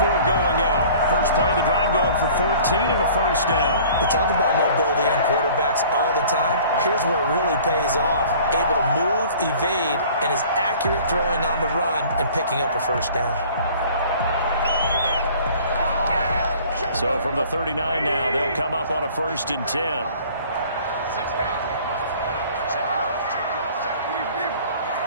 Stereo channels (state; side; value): inverted; both; correlation -0.49